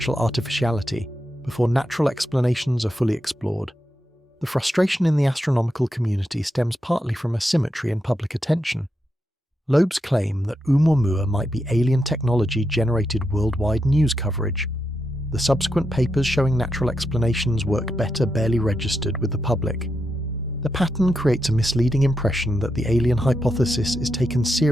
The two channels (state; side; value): normal; both; correlation 0.85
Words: artificiality before natural explanations are fully explored. The frustration in the astronomical community stems partly from asymmetry in public attention. Loeb's claim that Oumuamua might be alien technology generated worldwide news coverage. The subsequent papers showing natural explanations work better barely registered with the public. The pattern creates a misleading impression that the alien hypothesis is taken